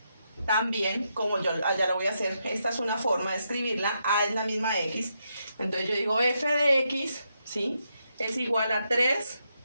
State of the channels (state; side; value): inverted; both; correlation -0.81